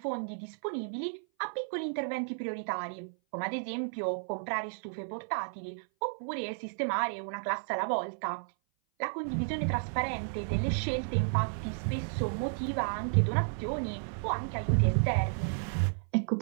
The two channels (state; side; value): silent; left; 56 dB below the other